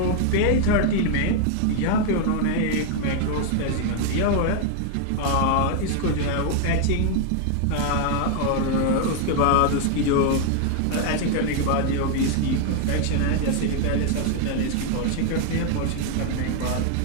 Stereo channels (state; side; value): different; both; correlation 0.00